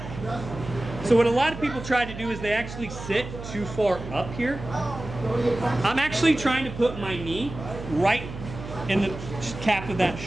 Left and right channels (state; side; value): noise; right; hum, 10 dB below the sound